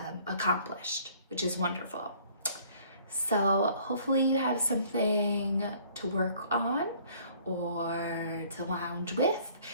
accomplished, which is wonderful. So hopefully you have something to work on or to lounge with,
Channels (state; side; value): inverted; both; correlation -0.57